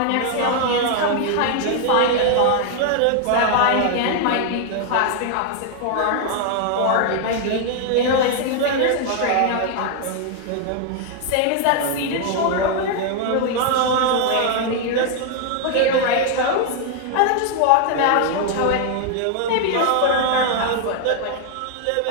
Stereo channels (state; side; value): different; both; correlation 0.00